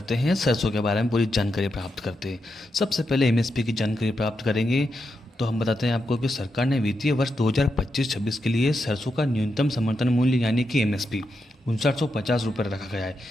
हैं सरसों के बारे में पूरी जानकारी प्राप्त करते हैं। सबसे पहले एमएसपी की जानकारी प्राप्त करेंगे तो हम बताते हैं आपको कि सरकार ने वित्तीय वर्ष 2025-26 के लिए सरसों का न्यूनतम समर्थन मूल्य यानी कि एमएसपी 5950 रुपये रखा गया है।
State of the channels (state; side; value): normal; both; correlation 0.85